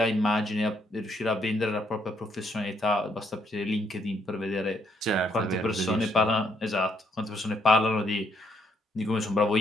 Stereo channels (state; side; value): normal; both; correlation 0.72